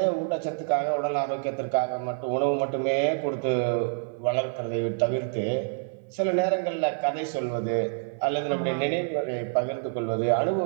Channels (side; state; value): left; silent; 55 dB below the other